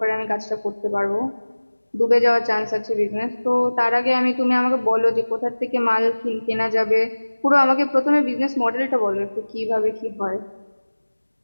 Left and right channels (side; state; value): both; inverted; correlation -1.00